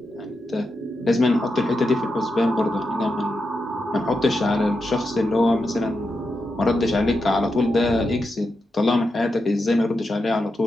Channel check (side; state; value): both; normal; correlation 0.87